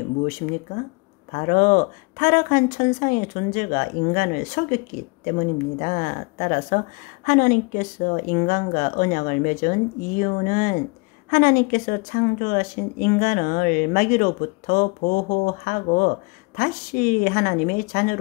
무엇입니까? 바로 타락한 천상의 존재가 인간을 속였기 때문입니다. 따라서 하나님께서 인간과 언약을 맺은 이유는 하나님께서 창조하신 인간을 마귀로부터 보호하고 다시 하나님의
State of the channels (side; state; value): right; quieter; 28.9 dB